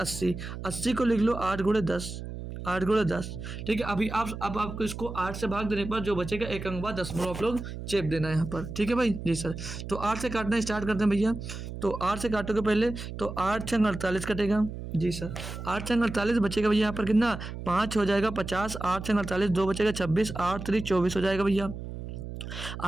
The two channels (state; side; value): noise; right; hum, 9 dB below the sound